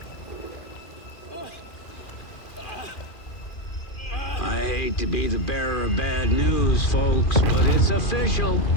I hate to be the bearer of bad news, folks, but it's official.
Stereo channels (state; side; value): late; right; 2.4 ms